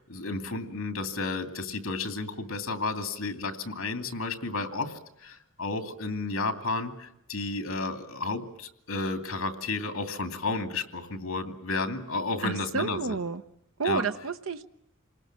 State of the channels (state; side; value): normal; both; correlation 0.03